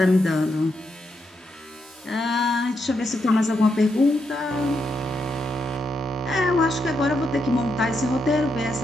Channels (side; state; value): both; normal; correlation 0.82